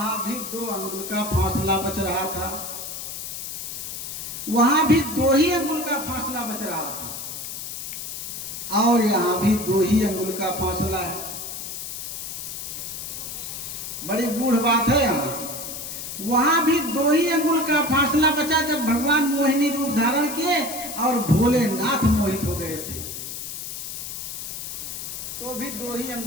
भी 2 अंगुल का फासला बच रहा था, वहां भी 2 ही अंगुल का फासला बच रहा था, और यहाँ भी 2 ही अंगुल का फासला है। बड़ी गूढ़ बात है यहाँ। वहां भी 2 ही अंगुल का फासला बचा जब भगवान मोहिनी रूप धारण किए और भोलेनाथ मोहित हो गए थे, तो भी 2 ही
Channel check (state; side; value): noise; left; hiss, 7 dB below the sound